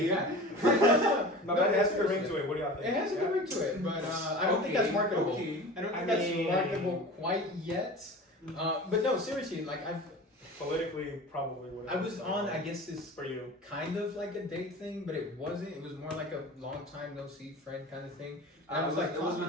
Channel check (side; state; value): both; normal; correlation 0.36